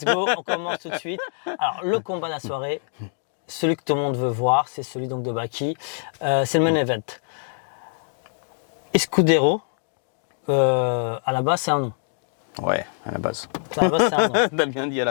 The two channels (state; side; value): silent; right; 62 dB below the other